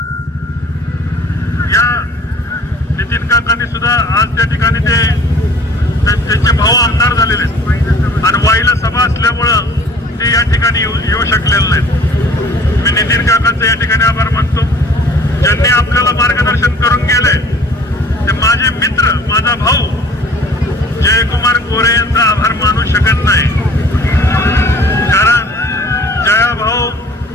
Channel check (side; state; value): both; normal; correlation 0.51